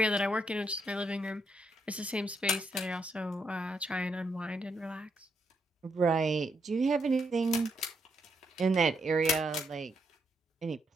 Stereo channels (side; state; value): both; normal; correlation 0.78